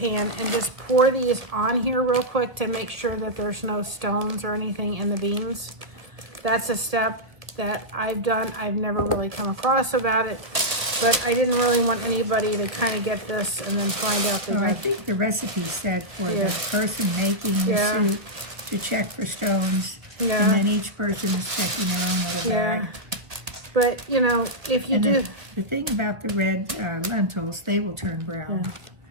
and just pour these on here real quick to make sure that there's no stones or anything in the beans. That's a step that I've done. I've never really come across about it, but I didn't really want anybody to kind of get this and then find out that. Well, I think the recipe said for the person making the soup to check for stones, and then each person is checking their own little bag. But you know, if you do, the thing about the red lentils, they will turn brown.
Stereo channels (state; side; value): late; left; 1.3 ms